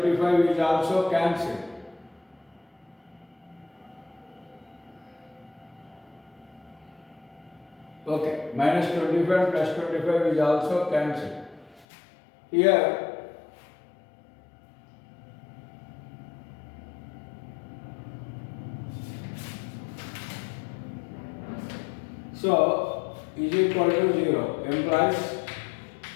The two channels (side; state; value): right; drops out; at 11.9 s